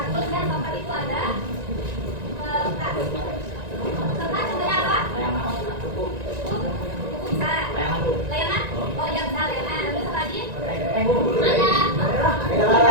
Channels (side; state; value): left; late; 1.9 ms